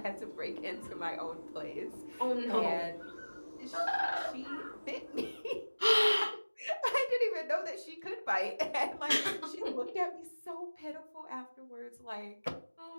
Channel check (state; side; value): inverted; both; correlation -1.00